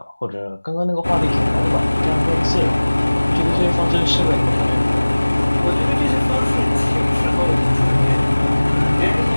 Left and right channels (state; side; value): inverted; both; correlation -1.00